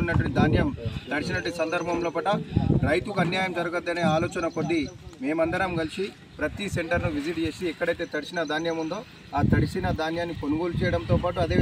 ఉన్నటువంటి ధాన్యం తడిసినటువంటి సందర్భంలో పట రైతుకు అన్యాయం జరగద్దనే ఆలోచన కొద్దీ మేమందరం కలిసి ప్రతి సెంటర్ను విజిట్ చేసి ఎక్కడైతే తడిసిన ధాన్యం ఉందో ఆ తడిసిన ధాన్యాన్ని కొనుగోలు చేయడంతో పాటు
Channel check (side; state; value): both; identical; correlation 1.00